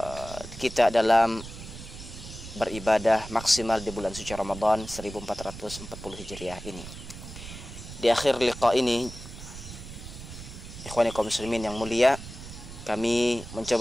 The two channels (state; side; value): noise; right; rumble, 13 dB below the sound